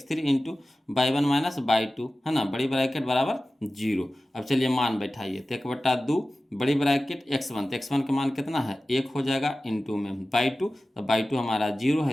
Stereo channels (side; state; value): both; normal; correlation 0.96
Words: into by one minus by two, है ना, बड़ी ब्रैकेट बराबर 0। अब चलिए मान बैठाइए, तो 1/2 बड़ी ब्रैकेट x1, तो x1 का मान कितना है 1 हो जाएगा, इंटू में बाई टू, तो बाई टू हमारा 0 है